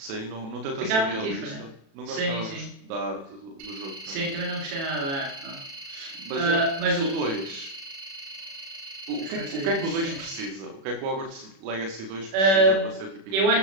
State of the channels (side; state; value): left; late; 36 ms